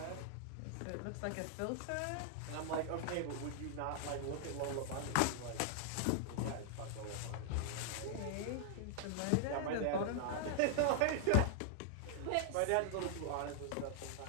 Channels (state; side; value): different; both; correlation -0.01